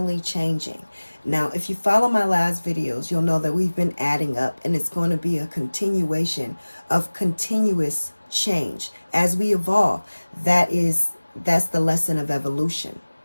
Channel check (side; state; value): both; inverted; correlation -1.00